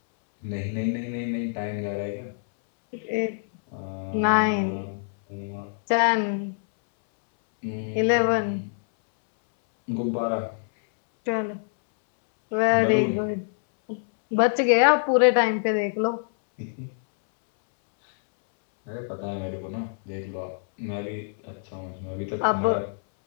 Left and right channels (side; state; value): right; silent; 61 dB below the other